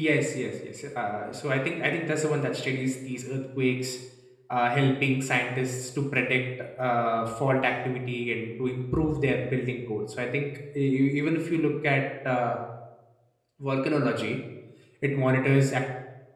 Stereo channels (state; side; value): identical; both; correlation 1.00